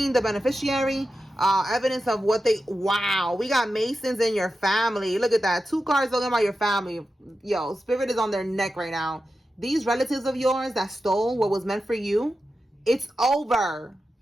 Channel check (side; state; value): both; normal; correlation 0.91